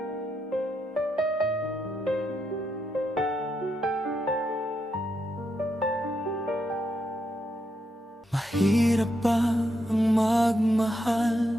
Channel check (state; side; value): normal; both; correlation 0.81